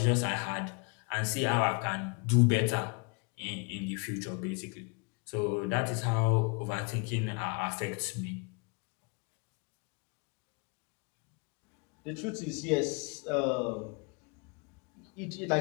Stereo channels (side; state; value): right; quieter; 32.6 dB